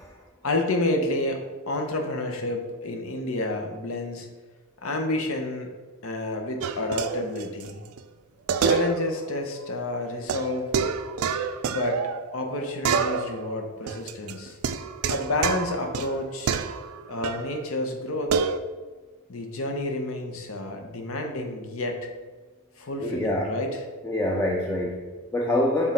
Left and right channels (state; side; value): normal; both; correlation 0.05